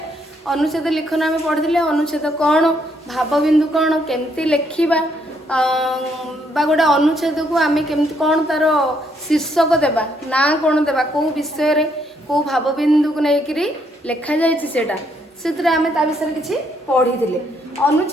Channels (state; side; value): normal; both; correlation 0.72